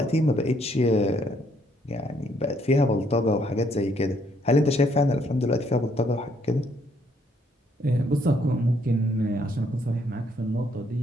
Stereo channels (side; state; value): both; normal; correlation 0.69